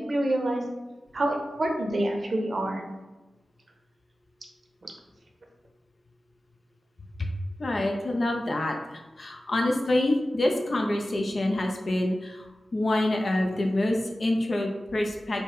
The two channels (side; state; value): both; normal; correlation 0.94